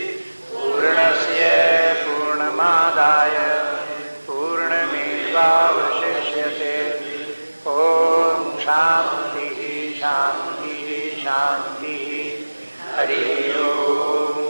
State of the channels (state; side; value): inverted; both; correlation -1.00